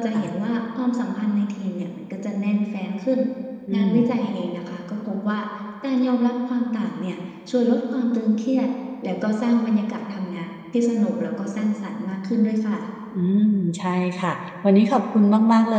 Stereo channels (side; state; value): both; identical; correlation 1.00